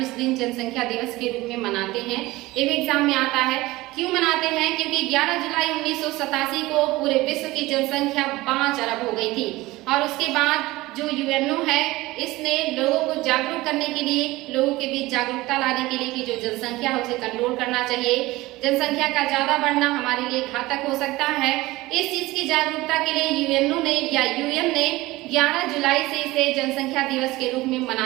इस दिन जनसंख्या दिवस के रूप में मनाते हैं। ये भी एग्जाम में आता है। क्यों मनाते हैं? क्योंकि 11 जुलाई 1987 को पूरे विश्व की जनसंख्या 5 अरब हो गई थी और उसके बाद जो यूएनओ है इसने लोगों को जागरूक करने के लिए, लोगों के बीच जागरूकता लाने के लिए कि जो जनसंख्या है उसे कंट्रोल करना चाहिए, जनसंख्या का ज्यादा बढ़ना हमारे लिए घातक हो सकता है। इस चीज की जागरूकता के लिए यूएनओ ने या यूएन ने 11 जुलाई से इसे जनसंख्या दिवस के रूप में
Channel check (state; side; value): quieter; left; 19.3 dB